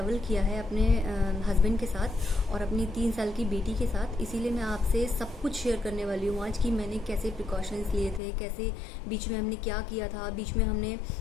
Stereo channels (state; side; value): drops out; right; at 8.2 s